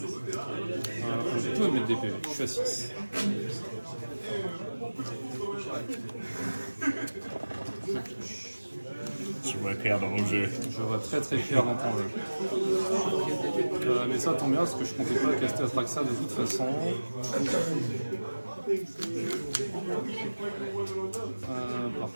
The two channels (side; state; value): both; inverted; correlation -1.00